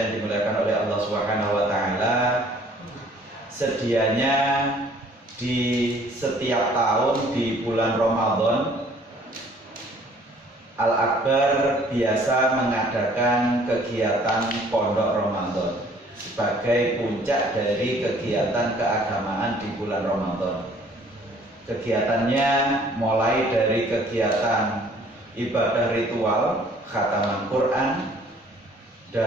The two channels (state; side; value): normal; both; correlation 0.56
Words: dimuliakan oleh Allah Subhanahu wa taala, sedianya di setiap tahun di bulan Ramadan Al-Akbar biasa mengadakan kegiatan Pondok Ramadan sebagai puncak dari kegiatan keagamaan di bulan Ramadan. Kegiatannya mulai dari kegiatan ibadah ritual khataman Quran